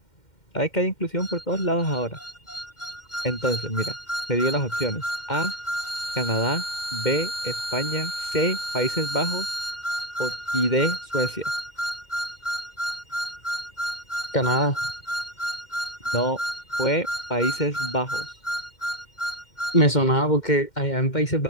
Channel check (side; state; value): right; late; 2.1 ms